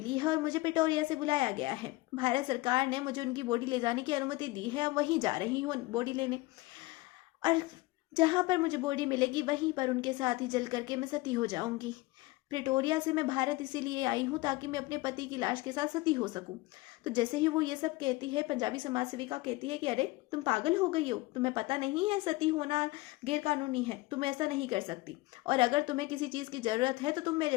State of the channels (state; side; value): quieter; right; 20.9 dB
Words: है और मुझे प्रिटोरिया से बुलाया गया है। भारत सरकार ने मुझे उनकी बॉडी ले जाने की अनुमति दी है और वहीं जा रही हूँ बॉडी लेने। और जहाँ पर मुझे बॉडी मिलेगी वहीं पर उनके साथ ही जल करके मैं सती हो जाऊंगी। प्रिटोरिया से मैं भारत इसीलिए आई हूँ ताकि मैं अपने पति की लाश के साथ सती हो सकूं। तो जैसे ही वो ये सब कहती है, पंजाबी समाज सेविका कहती है कि अरे तुम पागल हो गई हो, तुम्हें पता नहीं है सती होना गैर कानूनी है, तुम ऐसा नहीं कर सकती। और अगर तुम्हें किसी चीज़ की ज़रूरत है तो तुम